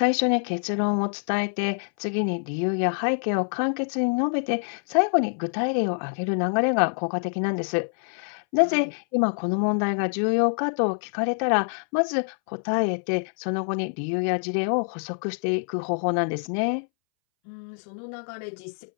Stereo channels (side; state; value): right; silent; 61 dB below the other